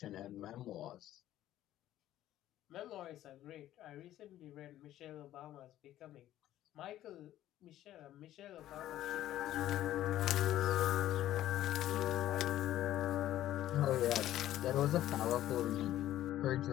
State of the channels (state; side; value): quieter; right; 13.2 dB